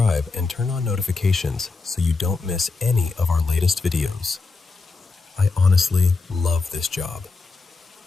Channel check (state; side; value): quieter; right; 4.0 dB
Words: and turn on notifications so you don't miss any of our latest videos. I honestly love this job.